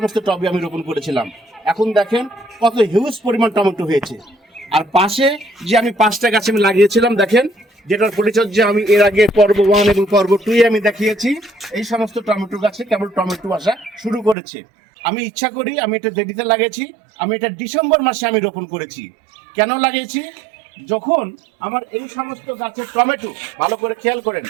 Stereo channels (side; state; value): left; drops out; at 14.4 s